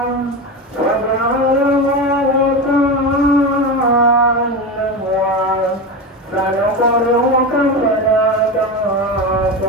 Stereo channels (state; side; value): normal; both; correlation 0.21